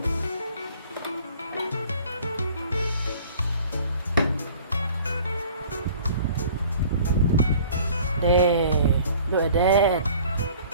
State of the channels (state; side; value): inverted; both; correlation -0.50